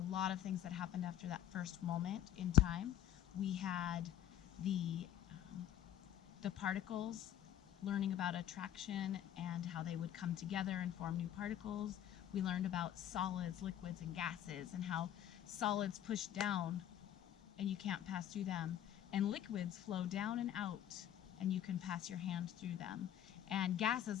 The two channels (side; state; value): right; quieter; 11.4 dB